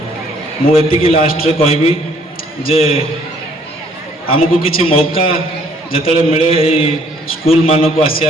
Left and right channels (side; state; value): both; normal; correlation 0.62